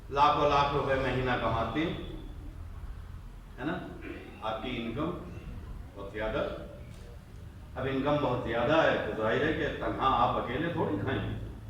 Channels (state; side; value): identical; both; correlation 1.00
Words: لاکھوں لاکھ روپے مہینہ کماتے ہیں، ہے نا، آپ کی انکم بہت زیادہ، اب انکم بہت زیادہ ہے تو ظاہر ہے کہ تنہا آپ اکیلے تھوڑی کھائیں گے،